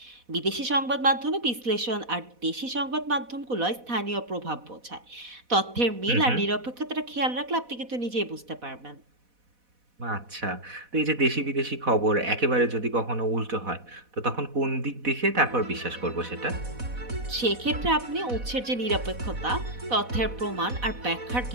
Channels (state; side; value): late; left; 4.1 ms